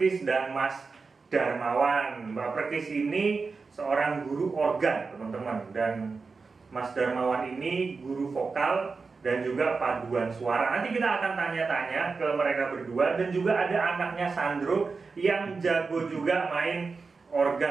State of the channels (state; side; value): quieter; left; 4.5 dB